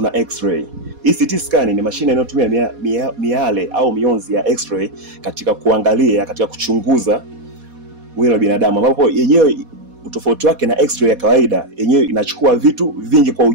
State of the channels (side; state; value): left; late; 4.2 ms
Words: X-ray. Hii CT scan ni mashine inayotumia miale au mionzi ya X-ray katika kuangalia, katika kuchunguza mwili wa binadamu, ambapo yenyewe utofauti wake na X-ray ya kawaida, yenyewe inachukua vitu vingi kwa